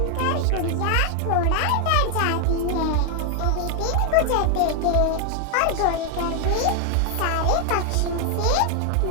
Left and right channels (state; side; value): different; both; correlation 0.00